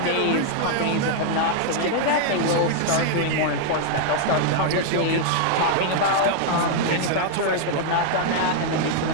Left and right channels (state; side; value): different; both; correlation 0.00